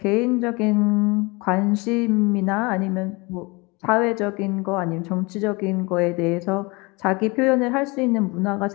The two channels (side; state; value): right; quieter; 26.4 dB